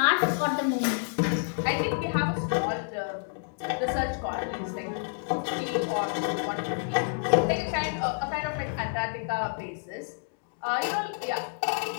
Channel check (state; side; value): silent; right; digital silence